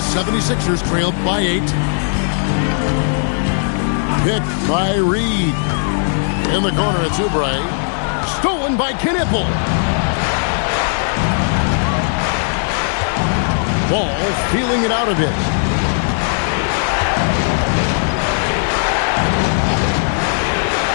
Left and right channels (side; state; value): right; silent; digital silence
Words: trailed by 8. Picked by Reed. In the corner, it's Oubre. Stolen by Knipple. Ball feeling it out a bit.